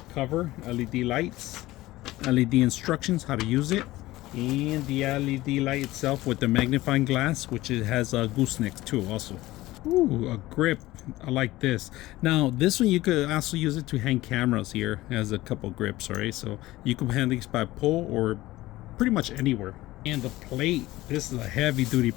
Cover, LED lights, LED instructions how to use it, and the LED light itself with the magnifying glass, which it has a gooseneck too also. Ooh, a grip. I like this. Now this one you could also use it to hang cameras here. It has a couple grips, all right? So you can hang these by pull or pretty much anywhere. And the plate, this is a heavy duty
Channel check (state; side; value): quieter; right; 17.7 dB